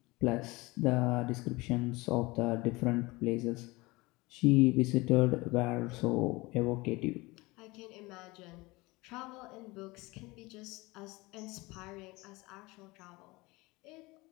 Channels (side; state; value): right; quieter; 22.8 dB